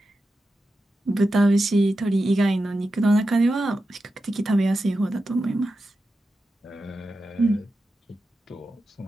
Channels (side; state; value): both; normal; correlation 0.90